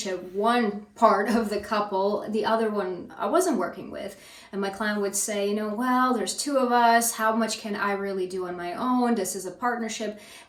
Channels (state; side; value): identical; both; correlation 1.00